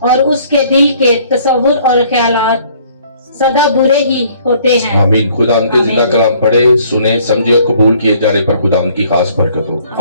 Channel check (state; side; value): inverted; both; correlation -0.59